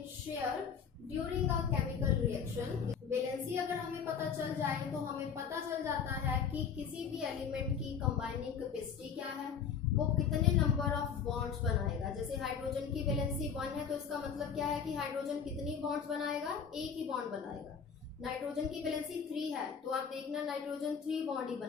share during a chemical reaction। Valency अगर हमें पता चल जाए तो हमें पता चल जाता है कि किसी भी एलिमेंट की कंबाइनिंग कैपेसिटी क्या है, वो कितने नंबर ऑफ बॉन्ड्स बनाएगा। जैसे हाइड्रोजन की वैलेंसी 1 है तो इसका मतलब क्या है कि हाइड्रोजन कितनी बॉन्ड्स बनाएगा, एक ही बॉन्ड बनाएगा। नाइट्रोजन की वैलेंसी 3 है तो आप देखना नाइट्रोजन 3 बॉन्ड ही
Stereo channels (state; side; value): quieter; right; 6.9 dB